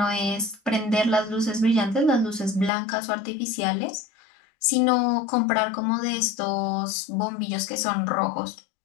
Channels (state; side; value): drops out; right; at 2.7 s